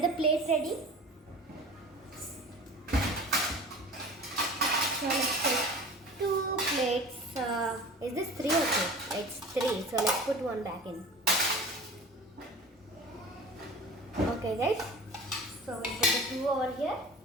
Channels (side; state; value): both; normal; correlation 0.40